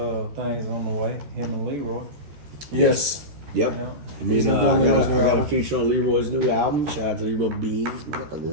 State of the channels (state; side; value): late; left; 13 ms